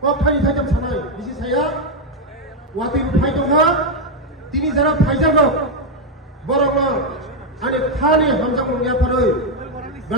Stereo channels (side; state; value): both; normal; correlation 0.03